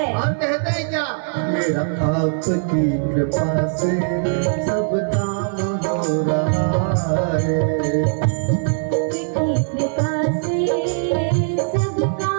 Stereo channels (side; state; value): left; silent; digital silence